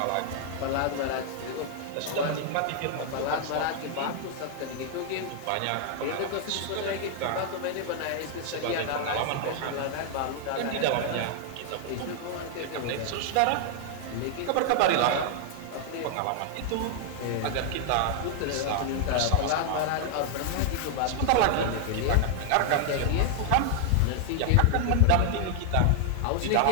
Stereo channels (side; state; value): both; different; correlation 0.00